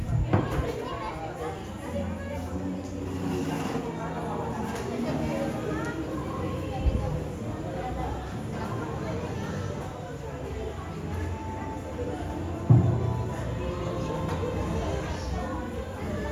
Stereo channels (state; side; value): identical; both; correlation 1.00